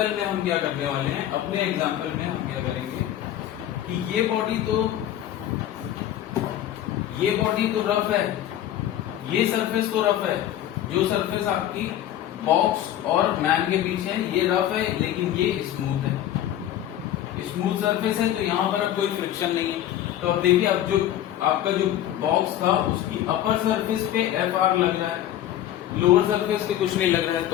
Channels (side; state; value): right; quieter; 12.0 dB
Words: में हम क्या करने वाले हैं, अपने एग्जाम्पल में हम क्या करेंगे कि ये बॉडी तो रफ है, ये सरफेस तो रफ है, जो सरफेस आपकी बॉक्स और मैन के बीच है ये रफ है, लेकिन ये स्मूथ है, स्मूथ सरफेस है, तो यहाँ पर अब कोई फ्रिक्शन नहीं है। तो अब देखिए, अब जो आपका जो बॉक्स था उसकी अपर सरफेस पे एफ आर लग रहा है, लोअर सरफेस पे कुछ नहीं लग रहा है, तो